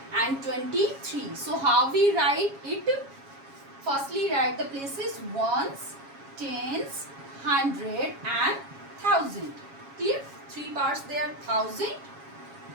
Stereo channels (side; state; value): left; late; 7.3 ms